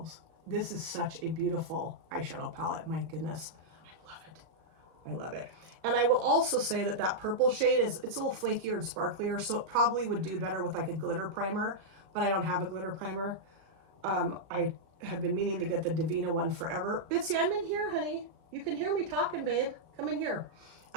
This is such a beautiful eyeshadow palette. My goodness. I love it. I love it. And I will also say that that purple shade it's a little flakier and sparklier, so it probably would do better with like a glitter primer, but I don't have a glitter primer. I have been meaning to get the Divina one forever. Bitsy, I'm in here, honey. You can hear me talking, babe. Come in here.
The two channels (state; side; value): late; left; 37 ms